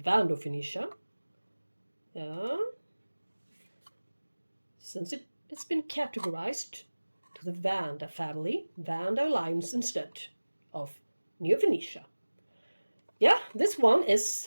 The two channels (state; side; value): inverted; both; correlation -1.00